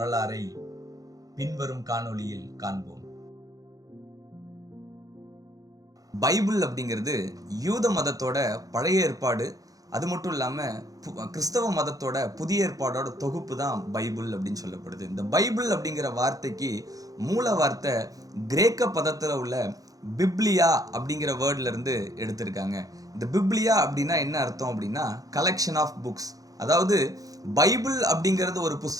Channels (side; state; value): left; late; 0.17 ms